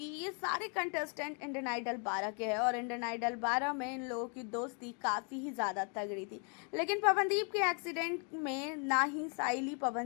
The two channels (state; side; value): quieter; right; 38.9 dB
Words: ये सारे कंटेस्टेंट इंडियन आइडल 12 के हैं और इंडियन आइडल 12 में इन लोगों की दोस्ती काफ़ी ही ज़्यादा तगड़ी थी। लेकिन पवनदीप के एक्सीडेंट में ना ही साइली